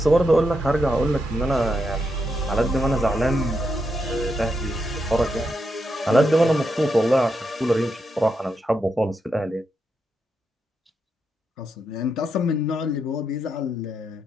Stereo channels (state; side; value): normal; both; correlation 0.83